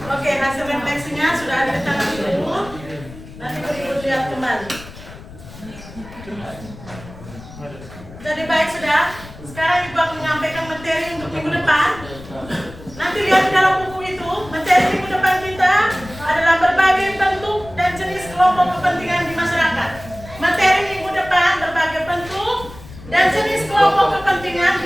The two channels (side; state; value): left; noise; rumble, 17 dB below the sound